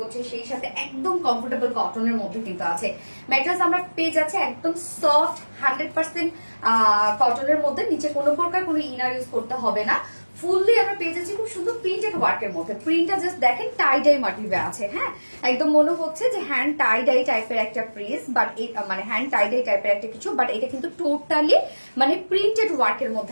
সেই সাথে একদম কমফোর্টেবল কটনের মধ্যে কিন্তু আছে। ম্যাটেরিয়ালস আমরা পেয়ে যাচ্ছে একদম সফট 100% কটনের মধ্যে, নিচে কোনো প্রকার কোনো ইনার ইউজ করতে হবে না। ফুললি আমরা পেয়ে যাচ্ছি খুব সুন্দর প্রিন্টেড ওয়ার্কের মধ্যে। প্রিন্টটা জাস্ট দেখেন টাই ডাই মোটিভে আছে, হ্যাঁ একদম মনে হচ্ছে যে হ্যান্ড টাই ডাই টাইপের একটা প্রিস, বাট মানে হ্যান্ড টাই ডাই টাইপের একটা কিছু, বাট এটা কিন্তু টোটালি মানে প্রিন্টেড ওয়ার্কের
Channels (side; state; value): both; inverted; correlation -1.00